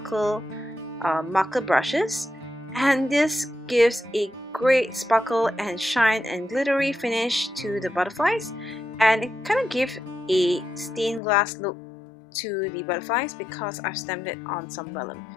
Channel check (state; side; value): drops out; right; at 11.2 s